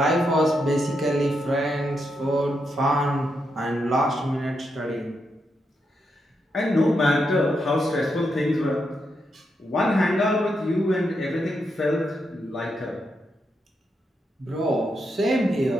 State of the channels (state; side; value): normal; both; correlation 0.82